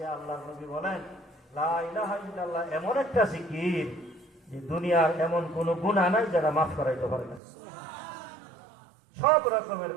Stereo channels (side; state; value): left; drops out; at 7.4 s